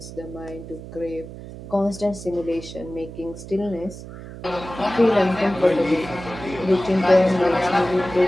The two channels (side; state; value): right; noise; hum, 13 dB below the sound